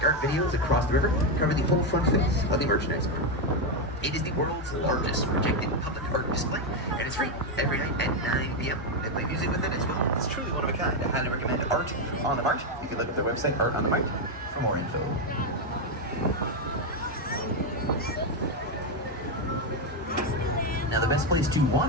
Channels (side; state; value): both; normal; correlation 0.06